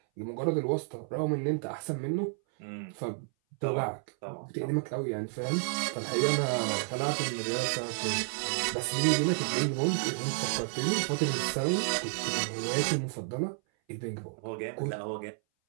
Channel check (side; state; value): left; silent; 57 dB below the other